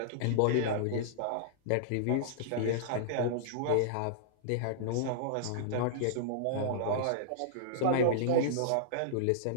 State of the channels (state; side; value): different; both; correlation -0.02